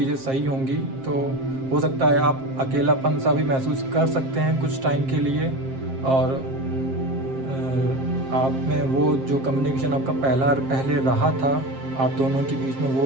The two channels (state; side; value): late; left; 7.5 ms